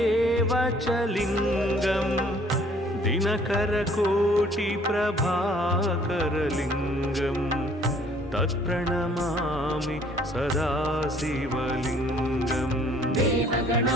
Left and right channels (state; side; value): normal; both; correlation 0.58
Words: च लिङ्गं दिनकरकोटिप्रभाकरलिङ्गं तत्प्रणमामि सदा शिवलिङ्गम्